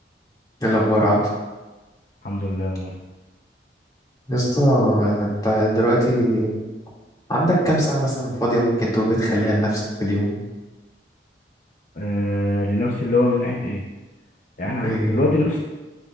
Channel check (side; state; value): both; normal; correlation 0.66